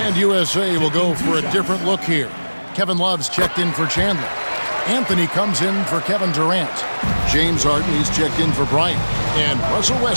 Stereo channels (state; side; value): inverted; both; correlation -1.00